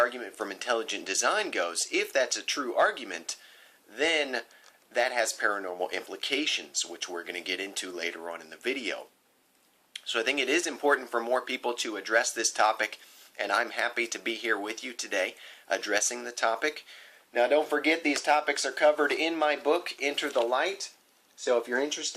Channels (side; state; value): both; identical; correlation 1.00